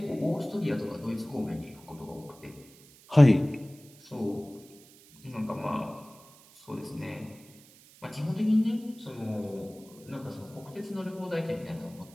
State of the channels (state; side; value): noise; right; hiss, 24 dB below the sound